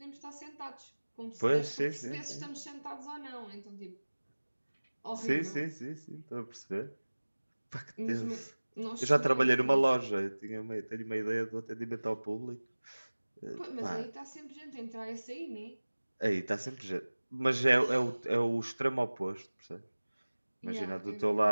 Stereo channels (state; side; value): inverted; both; correlation -1.00